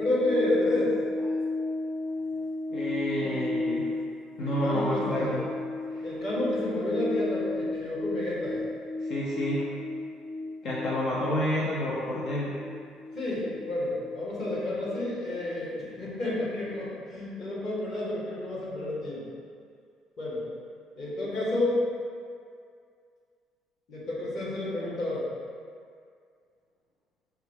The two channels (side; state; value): both; normal; correlation 0.74